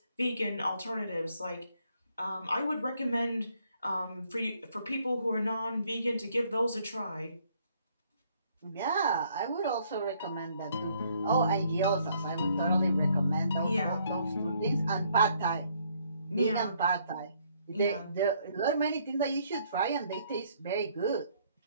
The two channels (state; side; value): inverted; both; correlation -0.67